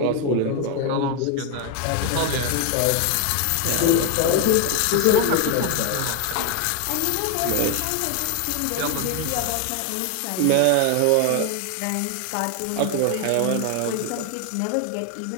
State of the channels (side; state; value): both; different; correlation 0.01